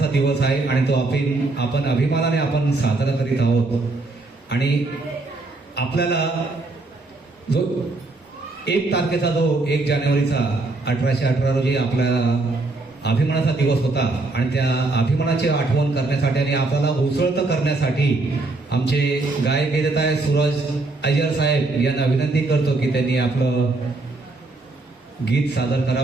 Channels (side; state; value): left; quieter; 3.2 dB